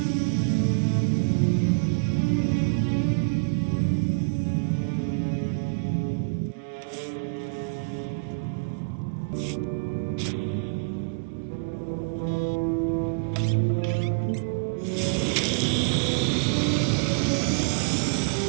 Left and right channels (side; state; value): left; quieter; 35.5 dB